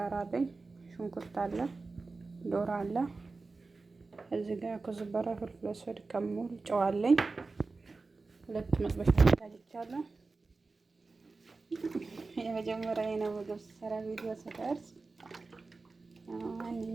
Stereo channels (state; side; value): quieter; left; 3.8 dB